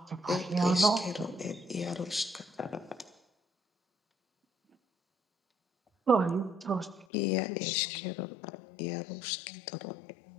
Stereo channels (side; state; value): right; drops out; at 7.1 s